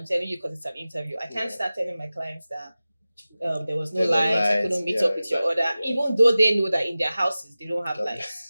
telling you because it's an interview. I can't start telling my clients that there was no light, I couldn't meet up with your order, even though they know that in their houses they don't have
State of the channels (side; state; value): both; inverted; correlation -0.96